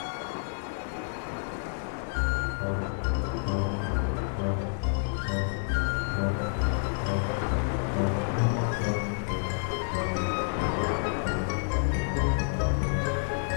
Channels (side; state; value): right; silent; 58 dB below the other